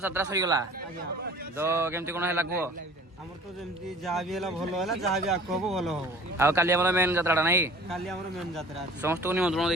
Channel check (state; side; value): normal; both; correlation 0.46